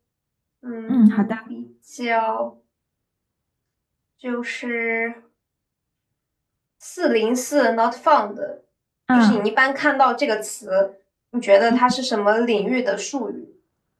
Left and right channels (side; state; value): both; identical; correlation 1.00